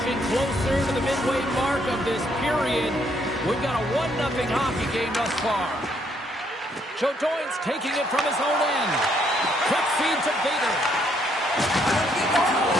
closer to the midway mark of this period. We've got a 1-0 hockey game thus far. Joe Doyne's taking it from his own end. Quick feed to Bader.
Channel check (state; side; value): normal; both; correlation 0.70